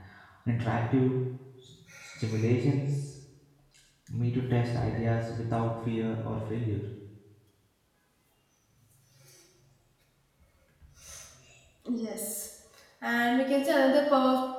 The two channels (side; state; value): both; identical; correlation 1.00